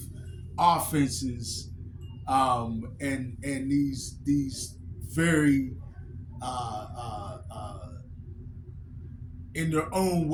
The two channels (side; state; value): both; identical; correlation 1.00